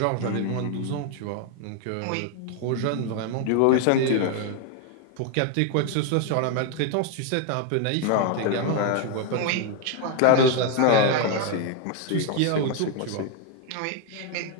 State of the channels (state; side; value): different; both; correlation 0.01